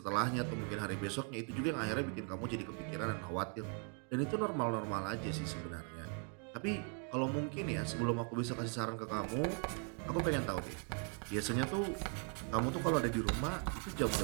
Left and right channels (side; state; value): left; quieter; 38.8 dB